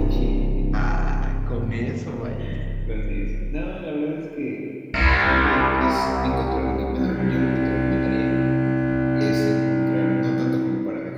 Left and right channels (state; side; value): identical; both; correlation 1.00